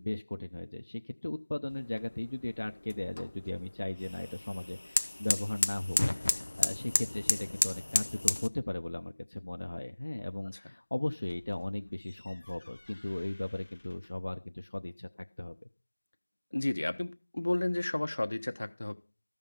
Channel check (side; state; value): both; inverted; correlation -1.00